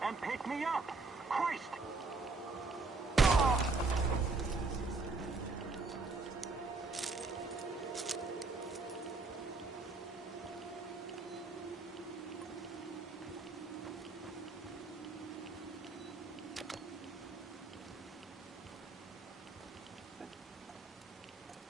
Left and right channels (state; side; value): quieter; left; 3.8 dB